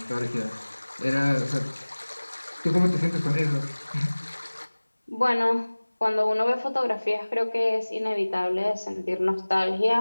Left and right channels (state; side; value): inverted; both; correlation -1.00